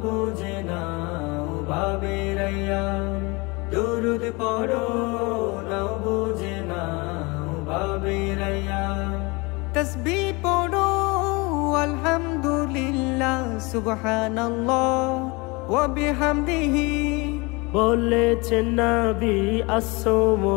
বুঝে নাও ভাবের আয়াম, দুরুদ পড়ো নাও বুঝে নাও ভাবের আয়াম। তাসবিহ পড়ো আলহামদুলিল্লাহ সুবহানাল্লাহ ওয়া বিহামদিহি, বলেছেন নবী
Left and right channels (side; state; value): right; quieter; 26.5 dB